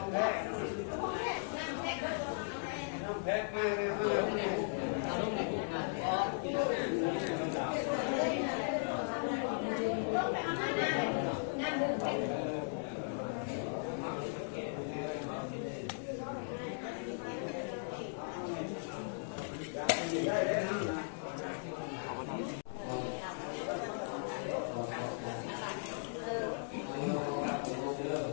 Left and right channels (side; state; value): right; silent; digital silence